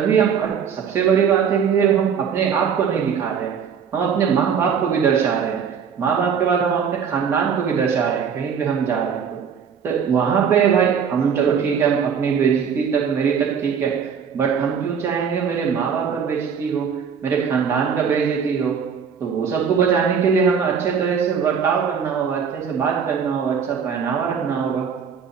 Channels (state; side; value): quieter; left; 6.9 dB